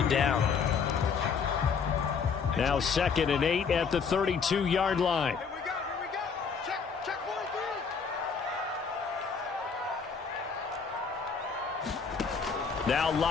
it down. Now 2nd and 8 at the 32-yard line. Now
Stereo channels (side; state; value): right; quieter; 5.8 dB